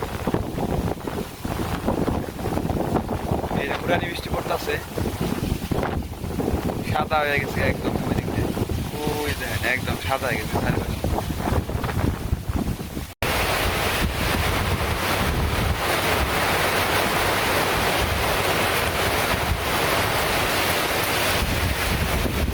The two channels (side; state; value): both; identical; correlation 1.00